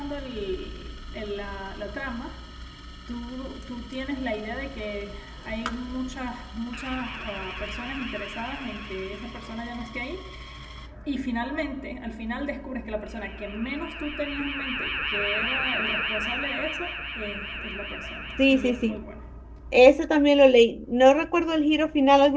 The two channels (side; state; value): both; identical; correlation 1.00